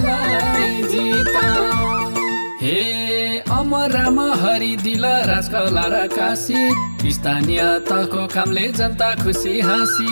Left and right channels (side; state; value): both; inverted; correlation -1.00